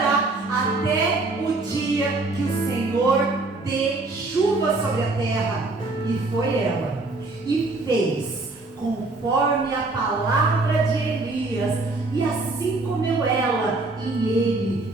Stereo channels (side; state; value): left; quieter; 3.3 dB